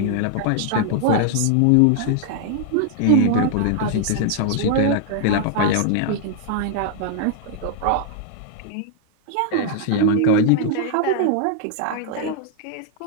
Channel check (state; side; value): different; both; correlation -0.01